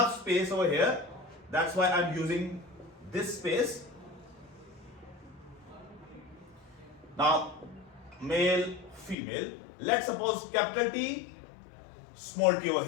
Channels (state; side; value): drops out; right; at 9.2 s